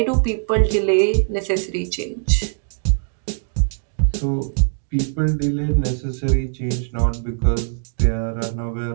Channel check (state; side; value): silent; left; digital silence